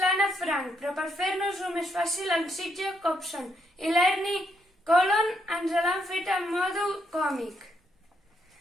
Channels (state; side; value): normal; both; correlation 0.76